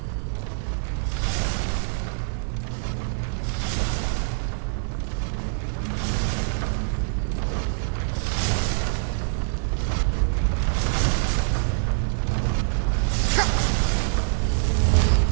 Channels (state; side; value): silent; left; 62 dB below the other